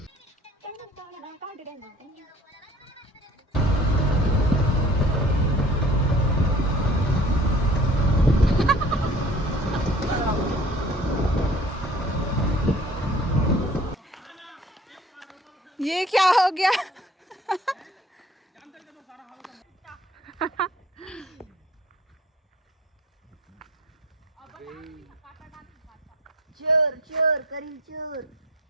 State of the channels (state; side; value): normal; both; correlation 0.49